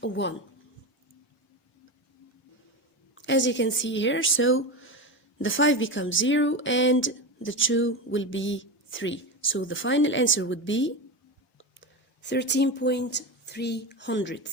a 1. As you can see here, so the 5 becomes 0 and the 2 will be 3. So the final answer would be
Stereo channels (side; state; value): both; normal; correlation 0.20